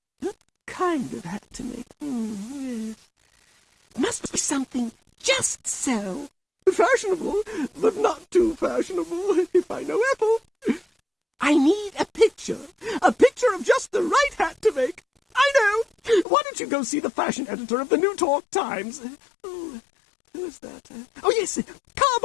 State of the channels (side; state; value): right; drops out; at 16.2 s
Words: what kind of hat to make? Yes. Must be something just so. Fashionable, but not too fashionable, if I know Ethel. I need a picture of just the right hat to make. I know. Why don't you go see the fashion editor of the New Talk Times? Oh, who's that? Oh, yes,